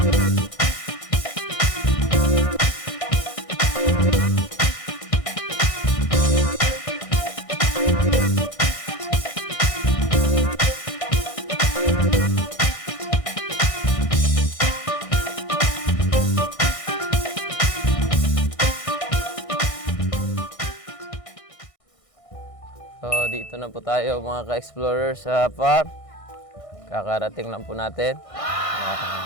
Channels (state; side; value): late; right; 1.6 ms